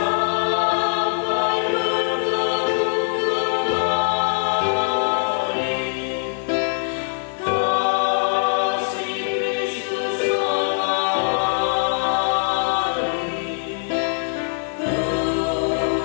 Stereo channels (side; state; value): right; silent; digital silence